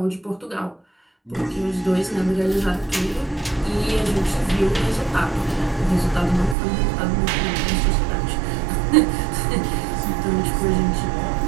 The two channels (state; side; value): drops out; left; at 6.6 s